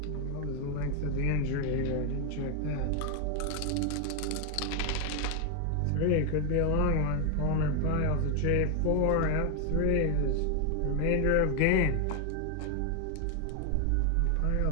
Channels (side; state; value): both; different; correlation 0.00